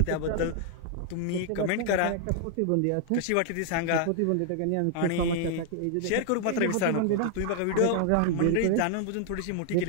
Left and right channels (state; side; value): different; both; correlation 0.00